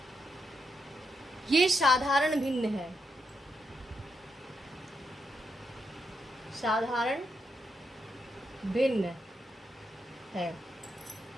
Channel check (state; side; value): normal; both; correlation 0.82